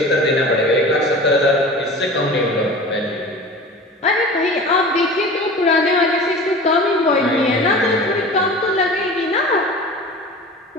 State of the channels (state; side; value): normal; both; correlation 0.37